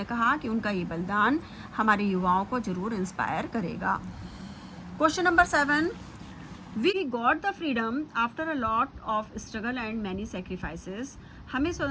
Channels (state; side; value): identical; both; correlation 1.00